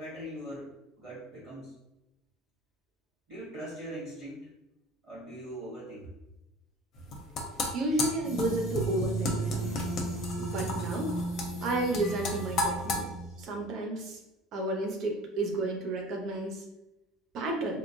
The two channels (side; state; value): both; normal; correlation 0.43